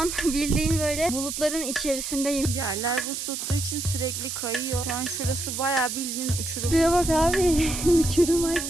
bildiğin böyle bulutların içerisindeyim. Yerler buz tuttuğu için sürekli kayıyor. Şu an şurası bayağı bildiğin uçurum. Şuraya bak abi. Uçurum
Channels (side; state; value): right; noise; hiss, 5 dB below the sound